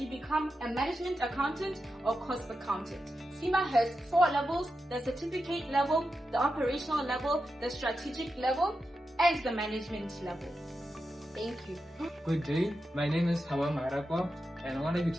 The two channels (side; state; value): both; normal; correlation 0.89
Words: become a management accountant or cost accountant. CIMA has 4 levels: the certificate level, the operational level, the strategic level, and the management level. Thank you. Good day, my name is Hawa Marakwa, and I want to be